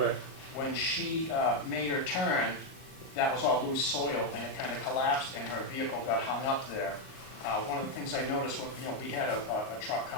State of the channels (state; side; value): late; right; 38 ms